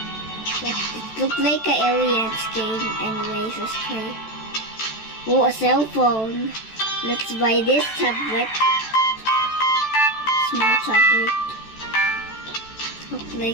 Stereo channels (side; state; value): right; late; 14 ms